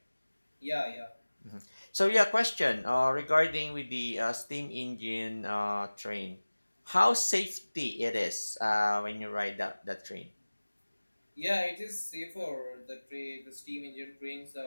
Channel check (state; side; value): inverted; both; correlation -1.00